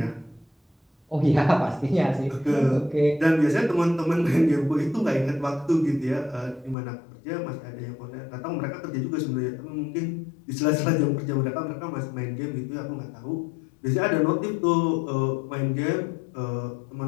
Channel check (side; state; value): right; drops out; at 6.8 s